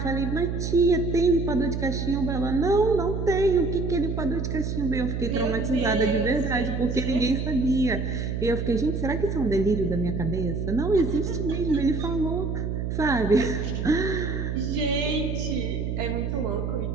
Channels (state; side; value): noise; right; hum, 2 dB below the sound